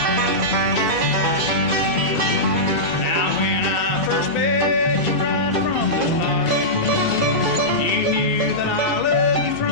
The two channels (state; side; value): normal; both; correlation -0.14